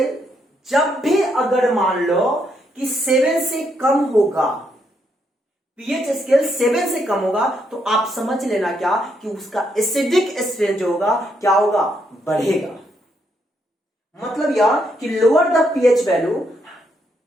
जब भी अगर मान लो कि 7 से कम होगा, पीएच स्केल 7 से कम होगा, तो आप समझ लेना क्या कि उसका एसिडिक स्ट्रेंथ जो होगा क्या होगा? बढ़ेगा। मतलब यह कि लोअर द पीएच वैल्यू,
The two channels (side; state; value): both; normal; correlation 0.76